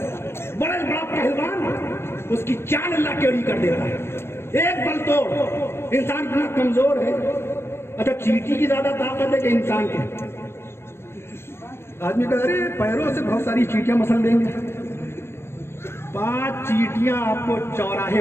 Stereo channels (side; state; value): right; late; 0.12 ms